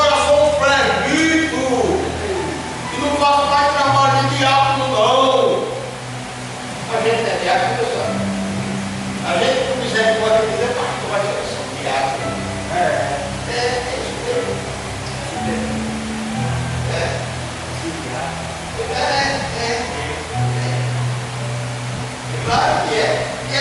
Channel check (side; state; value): both; identical; correlation 1.00